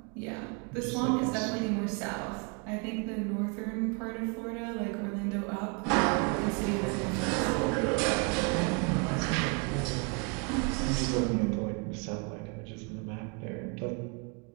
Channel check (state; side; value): quieter; left; 33.2 dB